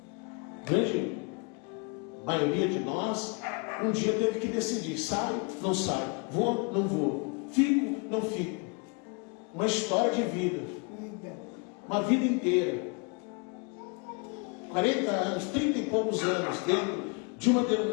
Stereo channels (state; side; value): quieter; right; 33.4 dB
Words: Grande maioria de nós um dia teve que decidir: sai, não sai, vou, não vou, fico, não fico. Uma história de vida, uma vida inteira, 40 anos, 30 e poucos anos dentro de uma